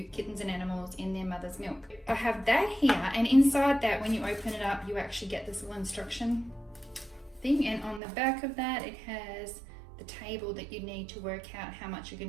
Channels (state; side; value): drops out; left; at 8.0 s